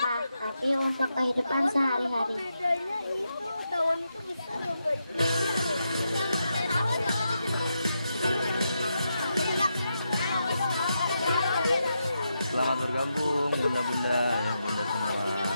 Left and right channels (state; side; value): inverted; both; correlation -0.85